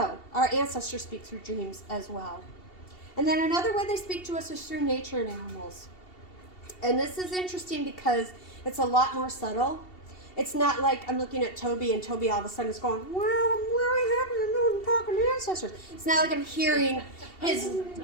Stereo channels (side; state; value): right; late; 2.7 ms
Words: our ancestors speak through dreams as well. And then another way they speak to us is through nature and animals. And this is interesting because it's a lot more subtle. It's not like I'm looking at Toby and Toby all of a sudden is going, wow, I'm really happy to know I'm talking to ancestors. It's not like I'm hearing his